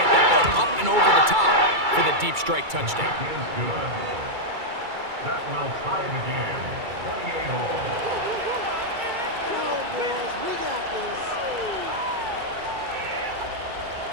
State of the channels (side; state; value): left; late; 2.3 ms